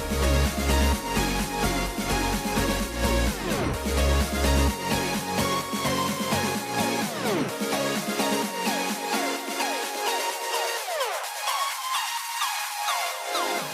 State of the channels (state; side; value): identical; both; correlation 1.00